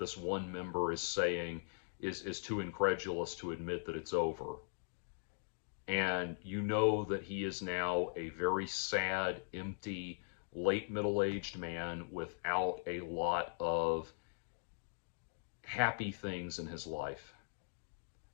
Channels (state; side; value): silent; right; digital silence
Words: one member is saying, is too incredulous to admit that it's over. And you know that he is now a very sad, empty, late middle-aged man without a lot of happy things in his life.